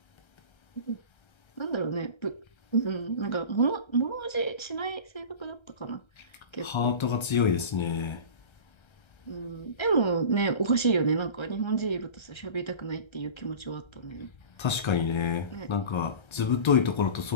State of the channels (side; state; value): right; late; 1.3 ms